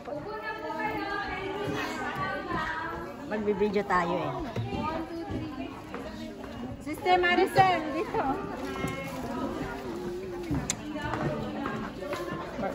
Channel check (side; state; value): both; identical; correlation 1.00